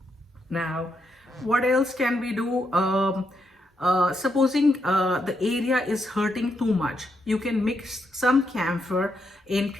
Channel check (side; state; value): both; normal; correlation 0.80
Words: Now, what else can we do? Supposing the area is hurting too much, you can mix some camphor in